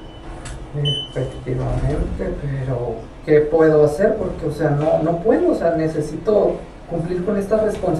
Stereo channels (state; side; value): identical; both; correlation 1.00